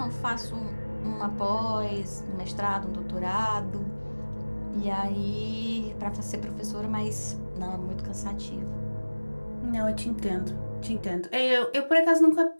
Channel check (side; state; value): both; inverted; correlation -1.00